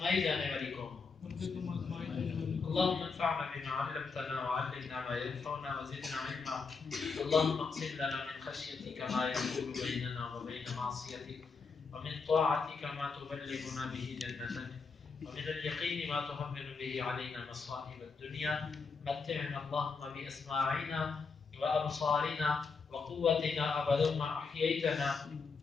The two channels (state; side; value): quieter; right; 4.9 dB